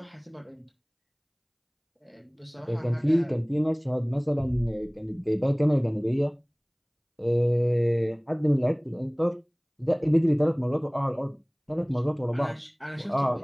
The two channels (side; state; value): both; identical; correlation 1.00